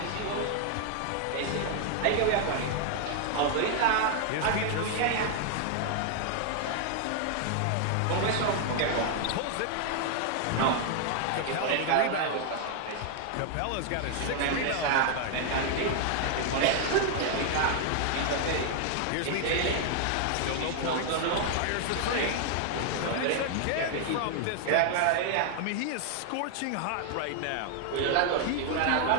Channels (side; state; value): both; different; correlation 0.00